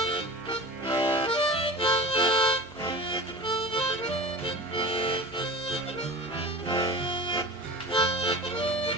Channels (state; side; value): normal; both; correlation 0.35